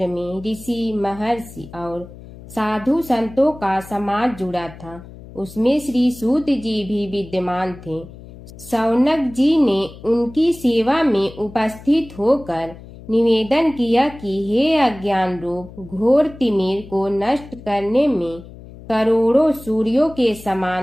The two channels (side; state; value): left; noise; hum, 17 dB below the sound